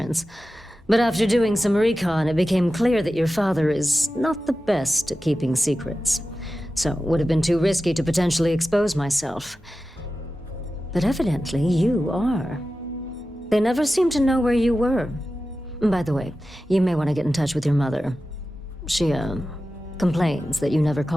But after doing some recon, it became clear that your father is not the best at keeping secrets. So it would have been too risky to potentially expose myself. But evidently, you are. They never seemed to know where you were. By the way, you may want to get in touch with your mother. She, complains that you never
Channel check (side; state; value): both; normal; correlation 0.94